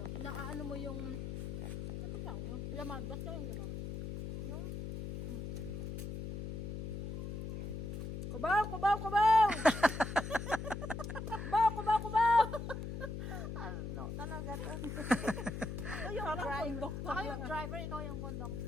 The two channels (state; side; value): noise; left; hum, 5 dB below the sound